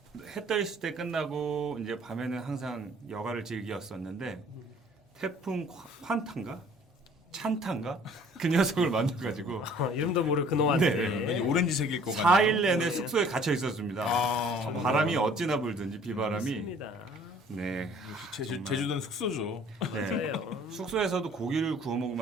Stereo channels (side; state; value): both; normal; correlation 0.54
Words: 해 떠 있을 때 끝나고 이제 밤에는 항상 여가를 즐겼었는데 태풍 환탄가? 찬탄가? 그 녀석을 만나가지고 이름도 모를 그놈한테. 네. 오렌지색일 것 같아요. 4일 내내 숙소에 갇혀 있었습니다. 바람이 어찌나 불든지 비바람이. 맞습니다. 네. 제주도는 숙소죠. 네. 맞아요. 숙소에서도 고기를 구워